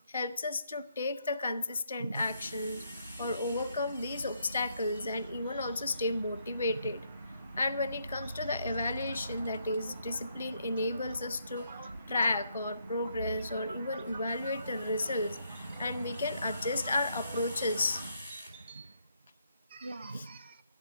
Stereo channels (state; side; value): inverted; both; correlation -0.75